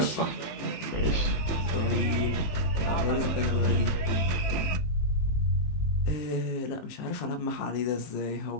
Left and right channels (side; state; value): right; late; 18 ms